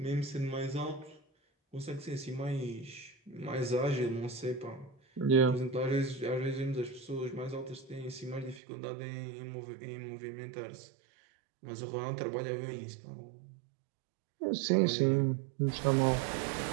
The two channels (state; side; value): drops out; left; at 8.6 s